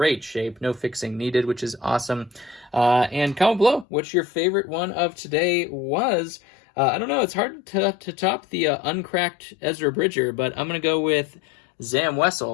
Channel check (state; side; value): drops out; right; at 3.9 s